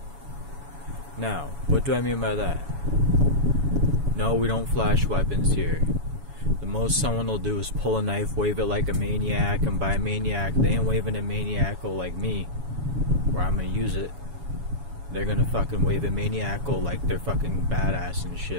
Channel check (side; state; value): left; late; 7.1 ms